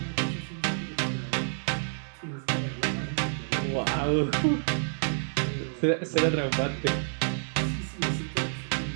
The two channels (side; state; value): left; silent; 59 dB below the other